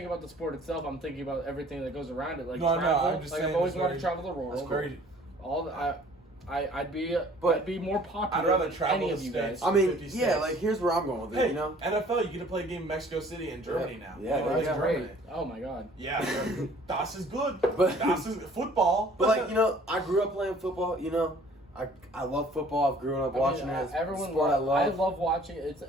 about the sport itself. I'm thinking about everything that goes around it. Like No, travel. I'm just like saying I've always it's wanted to very- travel the world. It's very. All the, I'd be more popular. I'd rather than travel any the of you states. guys. I mean, 50 yeah, states. like here's where I'm going with it, Hey, you know? NFL, you get to play a game in Mexico City and Germany now. Yeah, You know, that's it's great. Germany. Oh my god. Yeah, das is good. But- Das is football. But like, you know, I grew up playing football, you know? I love football. I've grown up watching it. It's a sport I love. I love watching it.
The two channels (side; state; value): both; normal; correlation 0.54